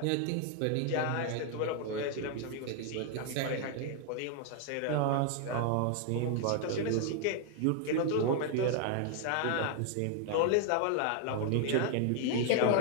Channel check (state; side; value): different; both; correlation 0.00